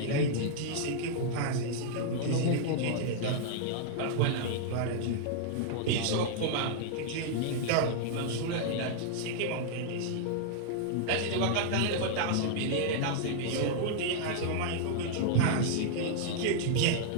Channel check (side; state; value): both; different; correlation -0.01